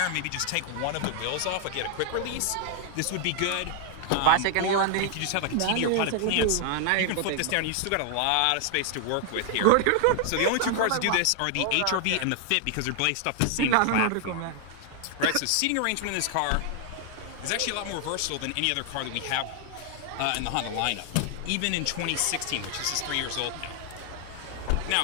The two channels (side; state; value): both; different; correlation 0.00